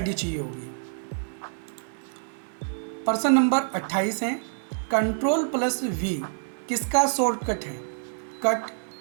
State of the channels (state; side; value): silent; left; digital silence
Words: चाहिए होगी। प्रश्न नंबर 28 है, Ctrl+V किसका शॉर्टकट है? कट,